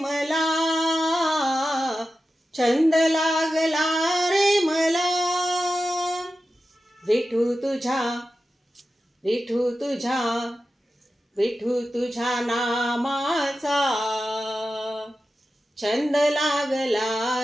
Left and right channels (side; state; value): both; normal; correlation 0.92